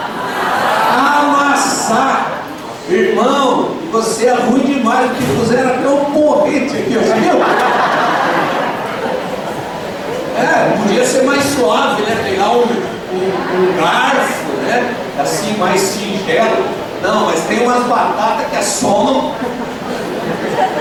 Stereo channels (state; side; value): identical; both; correlation 1.00